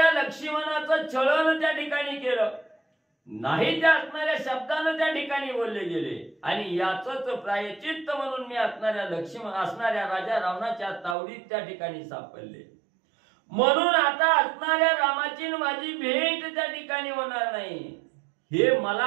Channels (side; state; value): left; drops out; at 11.2 s